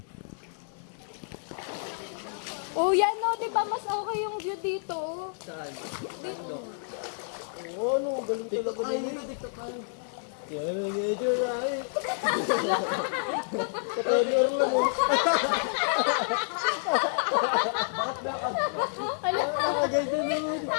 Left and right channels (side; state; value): right; silent; digital silence